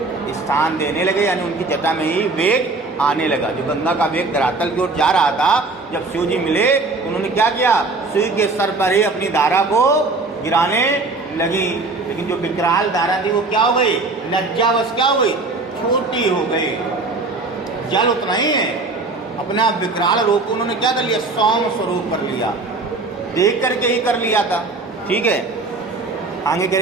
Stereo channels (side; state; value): left; quieter; 3.5 dB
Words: स्थान देने लगे, यानी उनकी जटा में ही वेग आने लगा। जो गंगा का वेग धरातल की ओर जा रहा था, जब शिव जी मिले उन्होंने क्या किया, शिव के सर पर ही अपनी धारा को गिराने लगी। लेकिन जो विकराल धारा थी वो क्या हो गई, लज्जावश क्या हो गई, छोटी हो गई। जल उतना ही है, अपना विकराल रूप उन्होंने क्या कर लिया, सौम्य स्वरूप कर लिया, देख करके ही कर लिया था। ठीक है, आगे कह